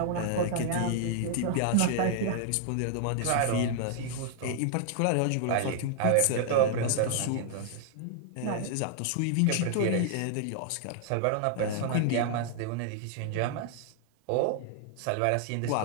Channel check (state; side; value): different; both; correlation 0.00